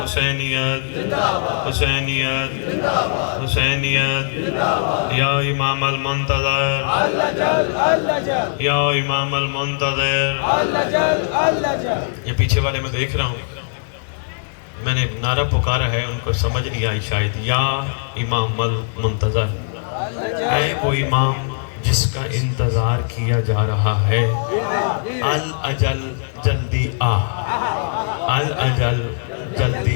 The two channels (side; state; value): right; silent; digital silence